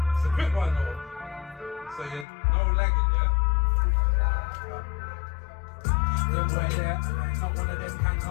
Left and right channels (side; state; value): right; drops out; at 2.2 s